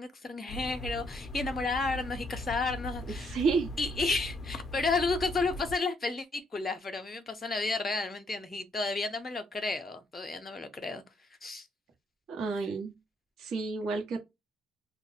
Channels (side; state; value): both; normal; correlation 0.71